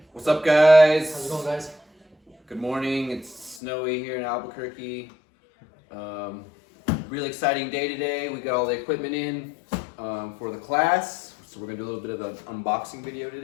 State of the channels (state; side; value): drops out; right; at 3.6 s